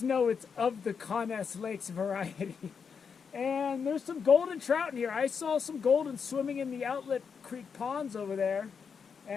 it's of the Conness Lakes variety. And there's some golden trout in here. I saw some golden swimming in the outlet creek ponds over there,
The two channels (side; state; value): right; quieter; 6.2 dB